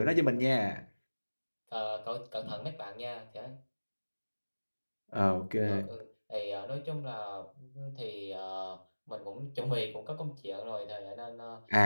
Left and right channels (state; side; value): inverted; both; correlation -1.00